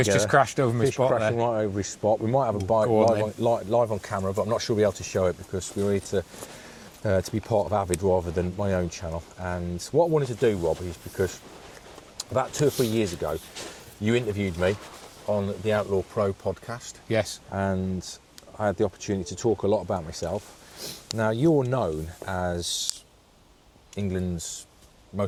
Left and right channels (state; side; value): identical; both; correlation 1.00